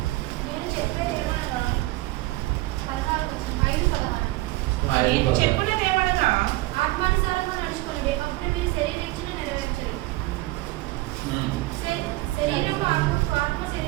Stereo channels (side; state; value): left; quieter; 19.7 dB